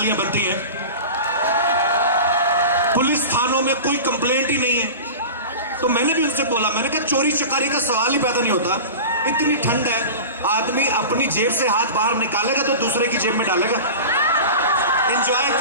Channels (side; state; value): both; inverted; correlation -0.32